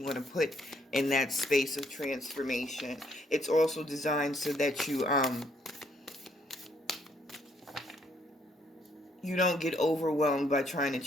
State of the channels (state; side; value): normal; both; correlation 0.69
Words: want to put in that space of transformation. It's also designed so that you don't get overwhelmed by trying to